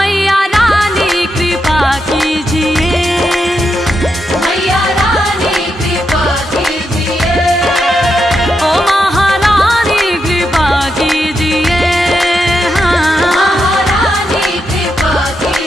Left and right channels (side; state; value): both; normal; correlation 0.84